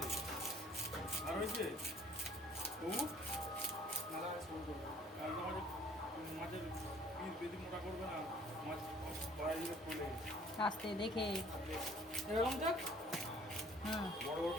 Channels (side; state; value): both; normal; correlation 0.55